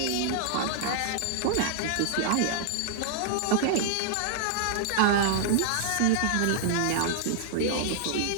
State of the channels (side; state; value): both; different; correlation -0.01